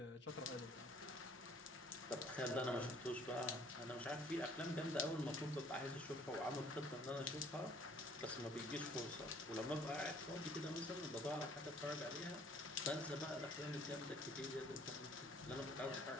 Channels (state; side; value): normal; both; correlation 0.57